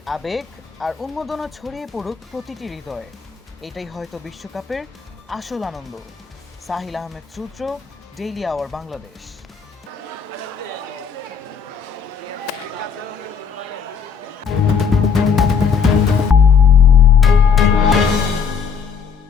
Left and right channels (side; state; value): right; quieter; 6.3 dB